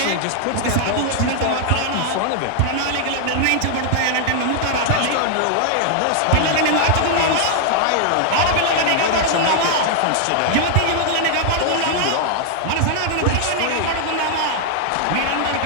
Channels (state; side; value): different; both; correlation 0.00